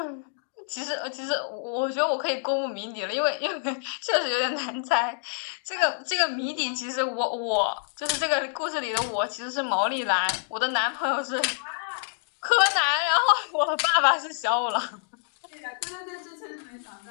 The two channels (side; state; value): right; silent; digital silence